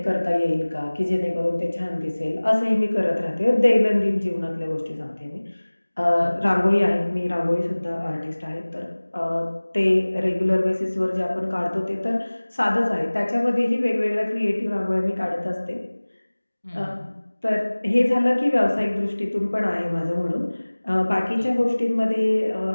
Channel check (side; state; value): both; inverted; correlation -1.00